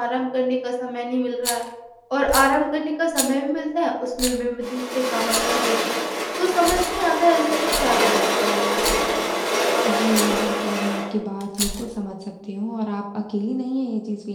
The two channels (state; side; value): identical; both; correlation 1.00